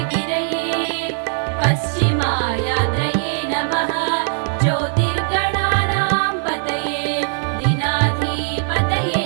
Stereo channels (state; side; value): silent; left; 59 dB below the other